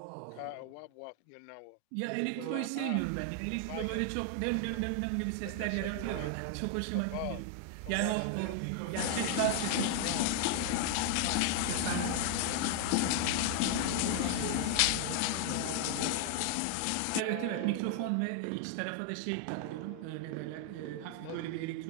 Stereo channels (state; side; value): different; both; correlation 0.00